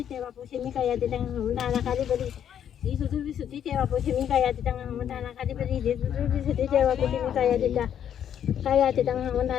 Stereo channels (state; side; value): quieter; right; 9.4 dB